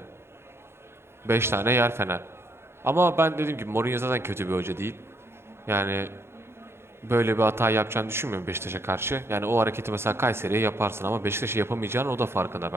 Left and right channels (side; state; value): left; late; 0.12 ms